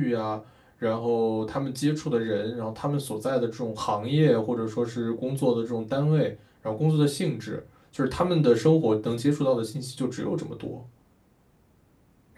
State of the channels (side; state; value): both; identical; correlation 1.00